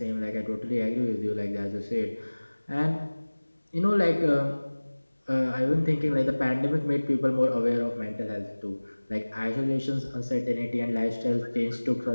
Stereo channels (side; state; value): both; inverted; correlation -1.00